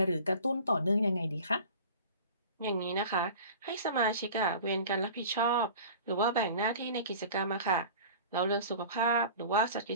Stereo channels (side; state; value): both; inverted; correlation -0.41